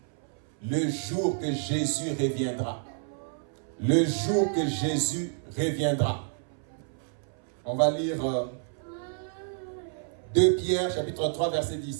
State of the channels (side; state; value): left; silent; 58 dB below the other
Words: le jour que Jésus reviendra. Le jour que Jésus reviendra. On va lire 2 Pierre, chapitre 3, verset